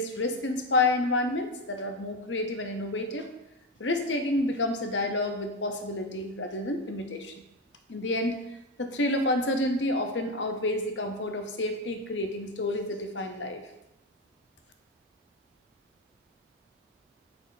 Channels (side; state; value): both; normal; correlation 0.14